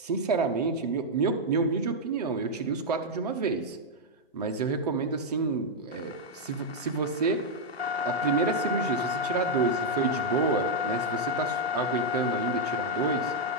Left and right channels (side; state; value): both; normal; correlation -0.02